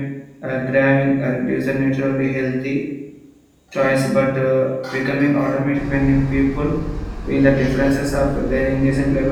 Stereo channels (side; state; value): both; identical; correlation 1.00